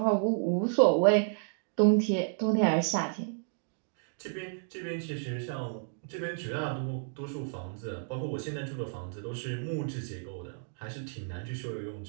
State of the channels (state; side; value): silent; left; digital silence